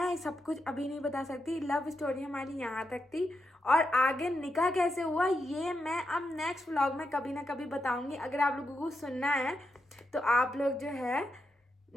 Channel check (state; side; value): normal; both; correlation 0.85